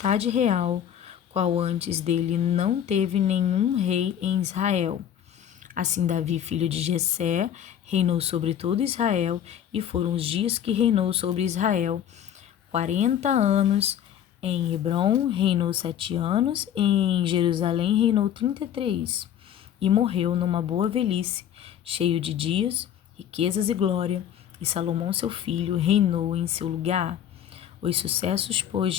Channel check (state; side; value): quieter; right; 10.0 dB